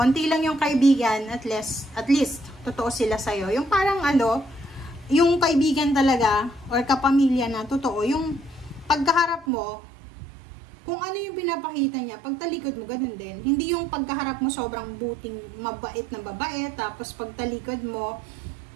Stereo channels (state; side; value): drops out; left; at 9.5 s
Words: lang yung kaibigan, at least, totoo sila sa'yo. Yung parang yung kaibigan talaga or kapamilya na totoo, yung pagkaharap mo kung ano yung pinapakita niya, pagtalikod mo, ganun din. Hindi yung pagkaharap mo sobrang buting, mabait na babae, tapos pagtalikod mo,